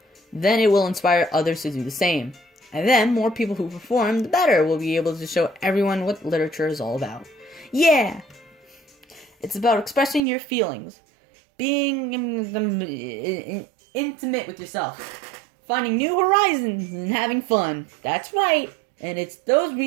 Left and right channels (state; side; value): drops out; left; at 10.2 s